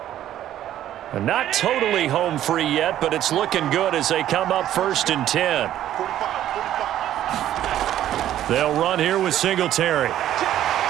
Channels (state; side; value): quieter; left; 12.1 dB